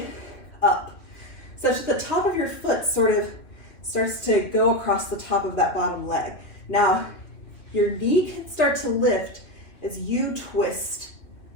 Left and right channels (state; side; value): late; right; 3.1 ms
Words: up, such that the top of your foot sort of starts to go across the top of that bottom leg. Now, your knee can start to lift as you twist